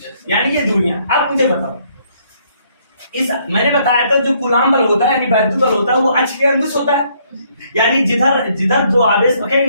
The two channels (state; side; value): inverted; both; correlation -0.67